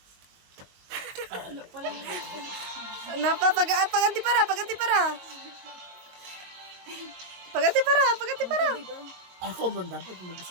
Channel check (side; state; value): left; late; 22 ms